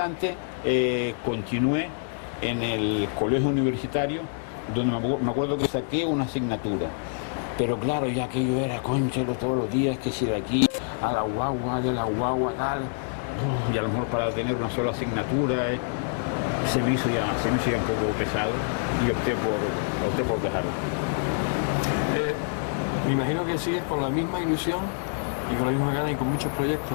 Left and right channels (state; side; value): silent; right; digital silence